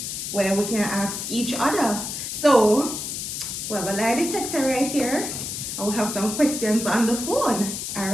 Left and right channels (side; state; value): left; noise; hiss, 5 dB below the sound